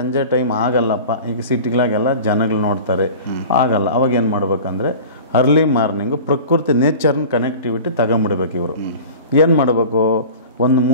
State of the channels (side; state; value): both; inverted; correlation -0.38